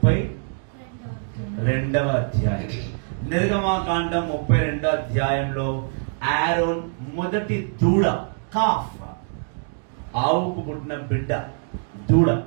అధ్యాయం. నిర్గమకాండం 32వ అధ్యాయంలో ఆరోన్ మొదటి దూడ, కాఫ్, ఆవుకు పుట్టిన బిడ్డ దూడ,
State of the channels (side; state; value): left; silent; 57 dB below the other